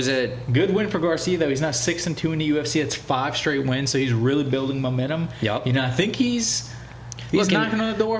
good win for Garcia though. He's now 6-2 in the UFC. It's 5 straight wins, so he's really building momentum. Yep. I think he's knocking on the door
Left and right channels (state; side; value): identical; both; correlation 1.00